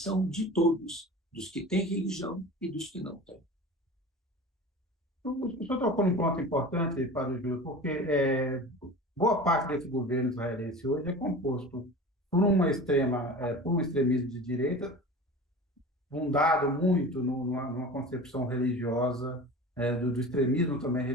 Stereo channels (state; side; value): normal; both; correlation 0.35